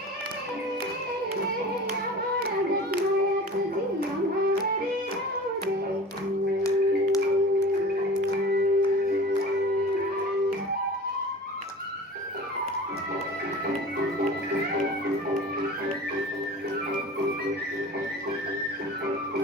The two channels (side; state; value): both; normal; correlation 0.38